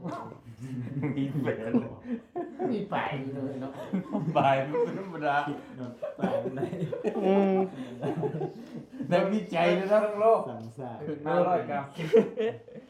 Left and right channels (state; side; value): identical; both; correlation 1.00